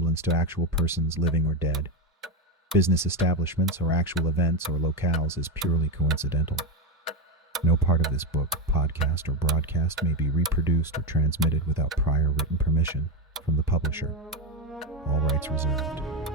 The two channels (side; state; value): both; normal; correlation 0.12